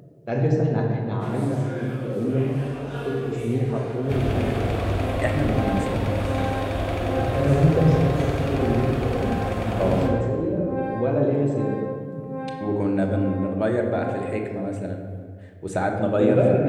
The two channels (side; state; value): both; identical; correlation 1.00